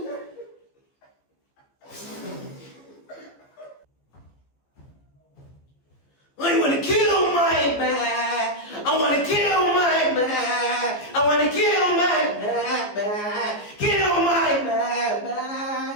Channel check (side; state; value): right; late; 15 ms